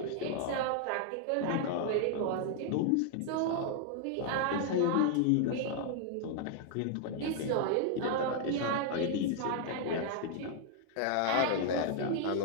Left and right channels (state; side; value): different; both; correlation 0.00